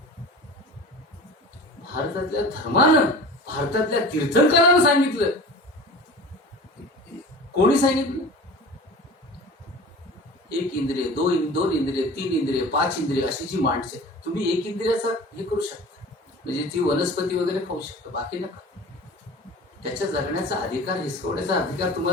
भारतातल्या धर्मानं, भारतातल्या तीर्थंकरांना सांगितलं. कोणी सांगितलं? एक इंद्रिय, दोन इंद्रिय, 3 इंद्रिय, 5 इंद्रिय अशी जी माणसे, तुम्ही एक इंद्रियाचा हे करू शकता, म्हणजे ती वनस्पती वगैरे खाऊ शकता, बाकी नका. त्याच्या जगण्याचा अधिकार, हिसकवण्याचा अधिकार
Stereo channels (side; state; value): both; normal; correlation 0.38